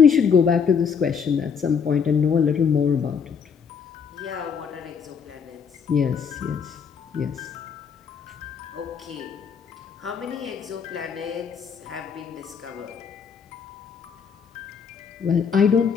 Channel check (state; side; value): quieter; right; 6.6 dB